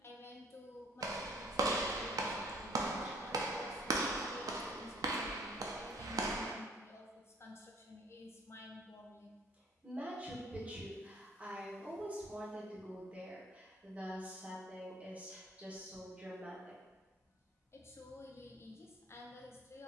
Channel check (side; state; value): both; normal; correlation 0.56